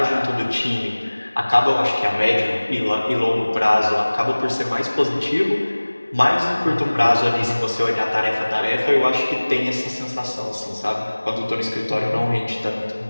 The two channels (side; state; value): both; inverted; correlation -1.00